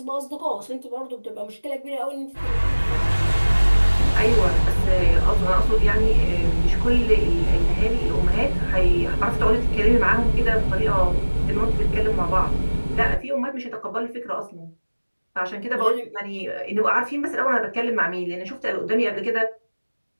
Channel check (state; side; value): inverted; both; correlation -1.00